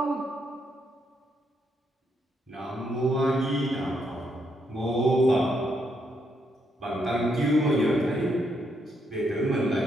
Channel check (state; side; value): normal; both; correlation 0.77